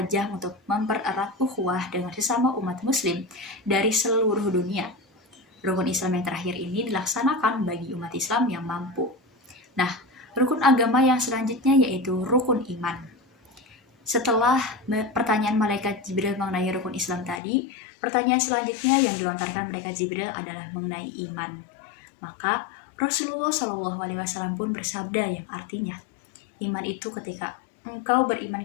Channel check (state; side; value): drops out; right; at 17.4 s